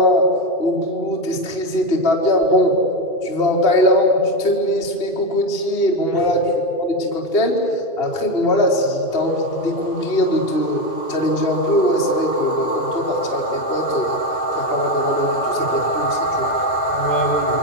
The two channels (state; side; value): late; right; 2.8 ms